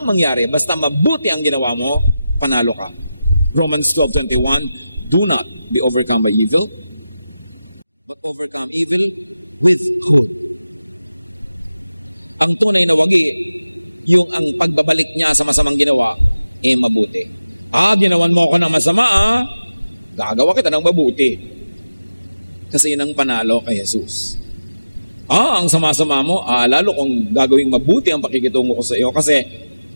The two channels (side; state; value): both; inverted; correlation -0.95